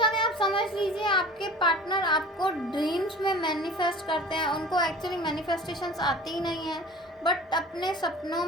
आप समझ लीजिए आपके पार्टनर आपको ड्रीम्स में मैनिफेस्ट करते हैं, उनको एक्चुअली मैनिफेस्टेशंस आती ही नहीं है, बट अपने सपनों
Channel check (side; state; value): both; normal; correlation 0.42